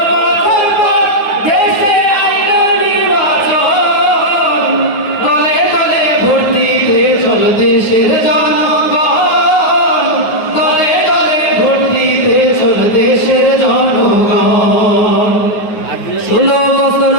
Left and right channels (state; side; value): late; right; 9.3 ms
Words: বছর পর দেশে আইলো নির্বাচন দলে দলে ভোট দিতে চল দেশের জনগণ দলে দলে ভোট দিতে চল দেশের জনগণ 16 বছর